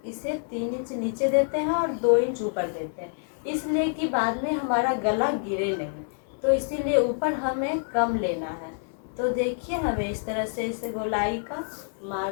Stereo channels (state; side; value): silent; right; digital silence